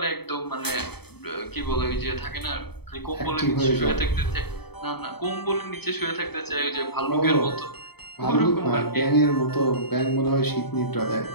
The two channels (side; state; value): right; late; 0.97 ms